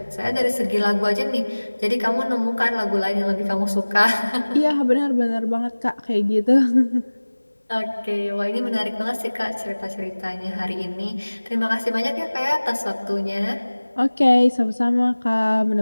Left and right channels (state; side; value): inverted; both; correlation -1.00